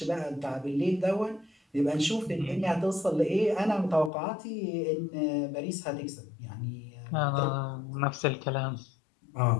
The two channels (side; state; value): right; drops out; at 4.1 s